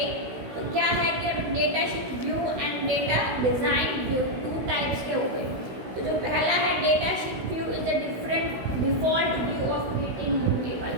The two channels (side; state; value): left; late; 16 ms